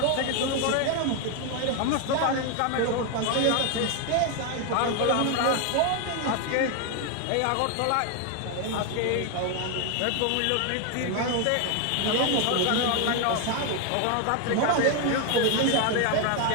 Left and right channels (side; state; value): both; different; correlation 0.01